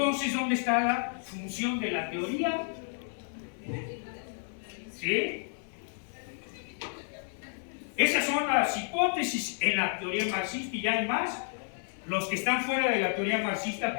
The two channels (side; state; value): right; silent; 57 dB below the other